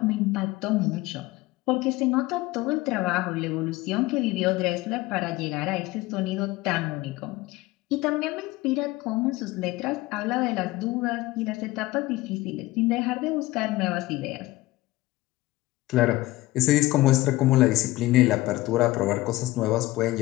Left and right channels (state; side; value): quieter; right; 18.6 dB